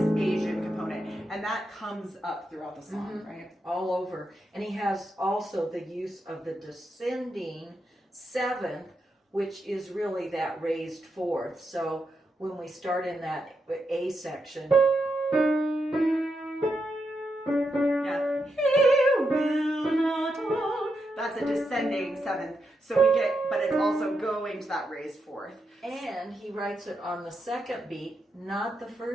Asian component. And that comes up throughout the song, right? All over. And he has also the use of the descending seventh, which is really that raised fourth. So when we start in that A section, that's a descending seventh. So we get, but it's also going to that raised fourth. And he writes it on the second beat, not the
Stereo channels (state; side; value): normal; both; correlation 0.84